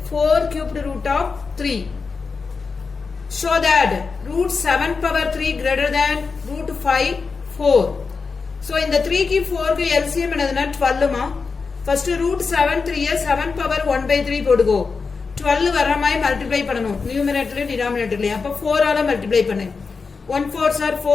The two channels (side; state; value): right; quieter; 4.8 dB